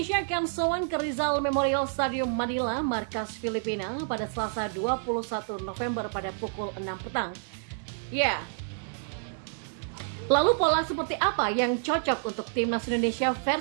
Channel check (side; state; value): left; silent; digital silence